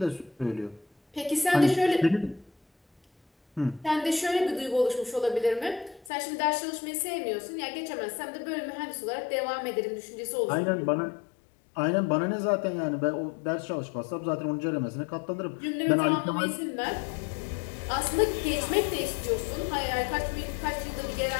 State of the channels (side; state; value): right; drops out; at 6.1 s